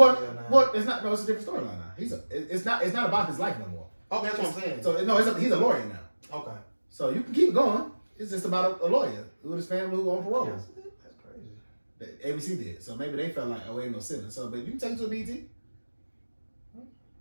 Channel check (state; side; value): inverted; both; correlation -1.00